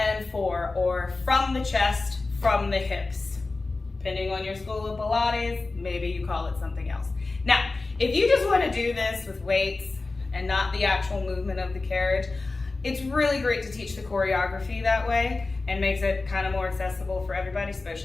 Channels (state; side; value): quieter; right; 3.5 dB